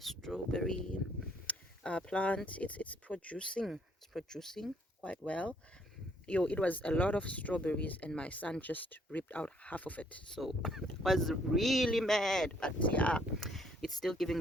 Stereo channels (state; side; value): normal; both; correlation 0.66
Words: strawberry plant. It's producing quite well. It was a lot of strawberries, and my son just ripped out half of it, so I was really mad. But yeah, it's still giving